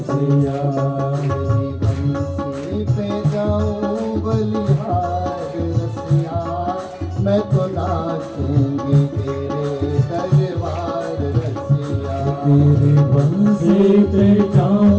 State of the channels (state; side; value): identical; both; correlation 1.00